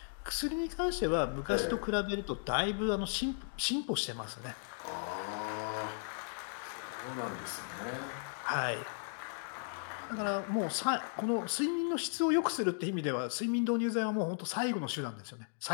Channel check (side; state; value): right; silent; digital silence